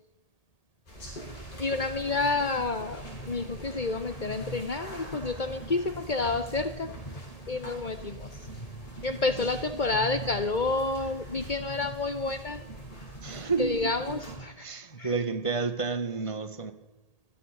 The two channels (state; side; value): late; right; 1.8 ms